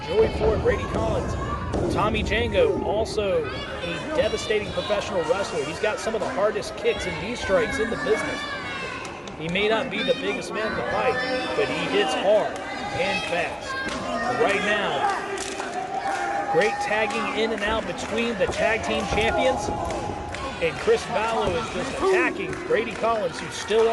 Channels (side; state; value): both; identical; correlation 1.00